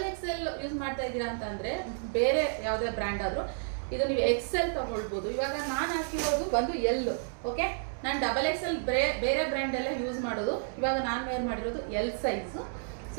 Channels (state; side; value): silent; left; 57 dB below the other